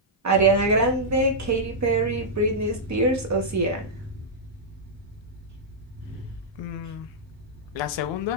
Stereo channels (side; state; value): both; normal; correlation -0.09